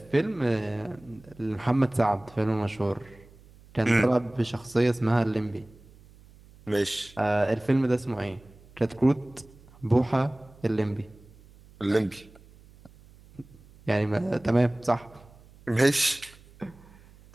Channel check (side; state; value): right; noise; hum, 24 dB below the sound